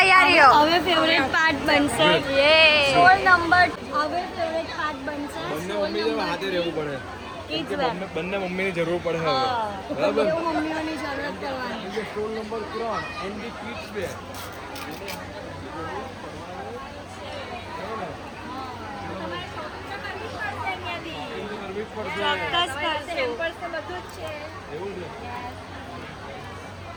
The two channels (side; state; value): both; identical; correlation 1.00